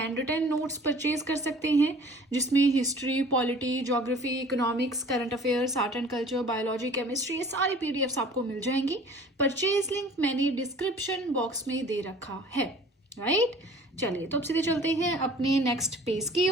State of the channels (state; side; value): normal; both; correlation 0.48